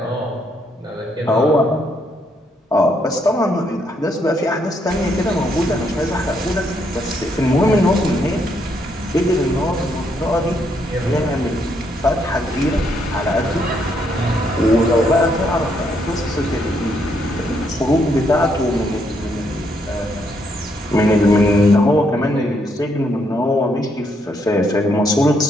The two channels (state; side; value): normal; both; correlation 0.74